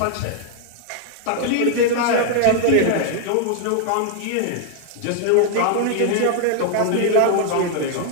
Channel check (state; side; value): different; both; correlation 0.00